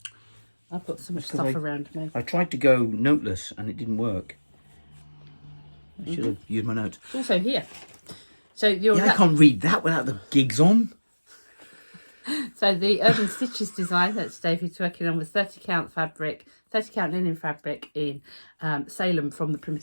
I've got so much stuff around me. I tried to go noteless and it didn't work. I should have used my notes. It's also here. So I can't read that without the gigs on. So the Urban Stitches design that David's working on was 30 count linen fabric in Salem from the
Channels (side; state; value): both; inverted; correlation -1.00